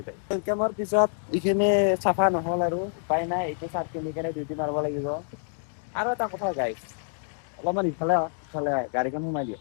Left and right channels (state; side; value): silent; right; digital silence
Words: ৱেলকামৰ পিছত এইখিনি চাফা নহ'ল আৰু উপায় নাই এইটো চাৰ্ট পিন্ধি কেনে ডিউটি মাৰিব লাগিব আৰু এটা কথা গাইছ অলপমান ইফালে গাড়ীখন সোমাই দিয়া